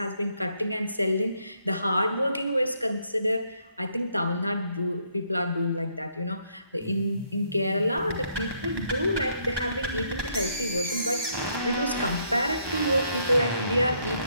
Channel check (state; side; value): inverted; both; correlation -0.72